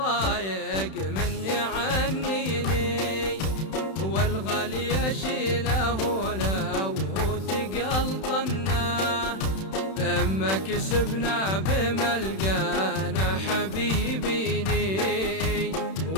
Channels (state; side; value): late; right; 31 ms